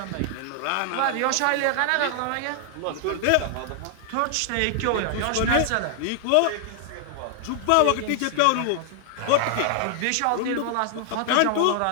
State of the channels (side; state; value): both; different; correlation 0.00